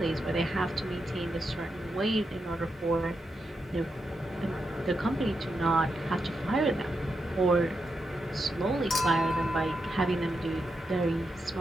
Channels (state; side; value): normal; both; correlation 0.85